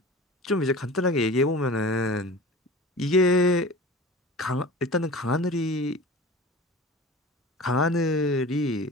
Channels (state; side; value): normal; both; correlation 0.37